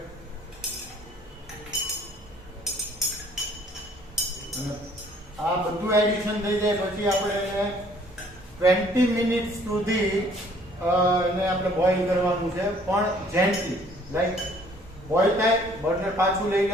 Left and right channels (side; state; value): both; normal; correlation 0.58